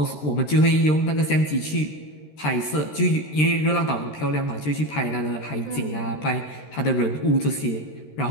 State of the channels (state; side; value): late; right; 13 ms